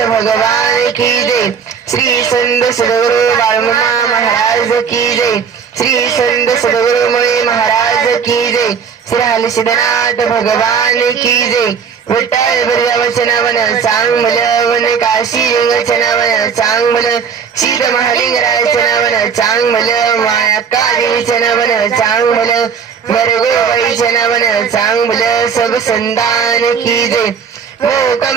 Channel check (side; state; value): left; quieter; 6.7 dB